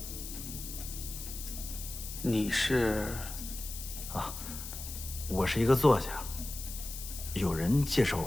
你是？啊，我是一个作家，有人介绍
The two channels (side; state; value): left; noise; hiss, 9 dB below the sound